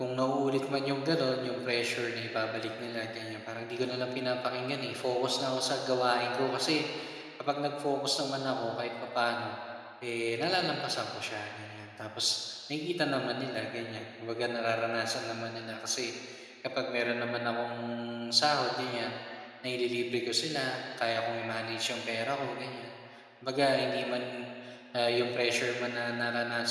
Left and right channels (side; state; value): both; identical; correlation 1.00